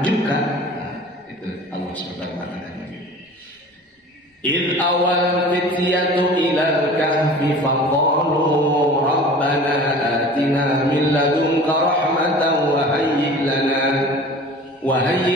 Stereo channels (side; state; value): both; normal; correlation 0.41